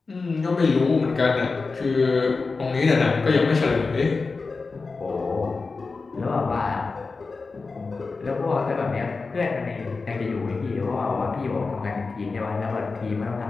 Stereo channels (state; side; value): quieter; right; 4.2 dB